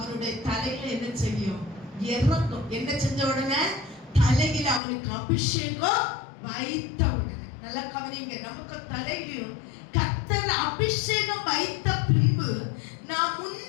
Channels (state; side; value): drops out; right; at 4.8 s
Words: தலையில என்ன செய்யும், இறங்கும். என்ன செஞ்ச உடனே, தலையில அவனுக்கு அபிஷேகம் வைத்த உடனே. நல்லா கவனிங்க, நமக்கு தலையிலும் கர்த்தர் அபிஷேகம் வைத்த பின்பு நாம்